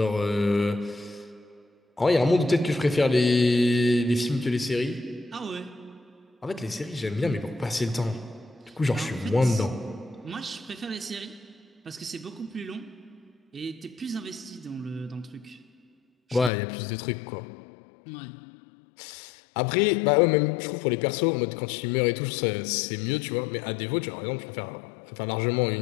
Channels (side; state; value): right; drops out; at 16.5 s